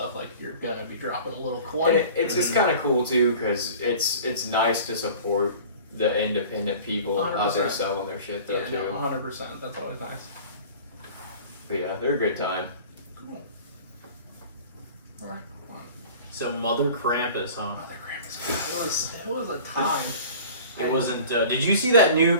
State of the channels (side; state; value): both; inverted; correlation -0.43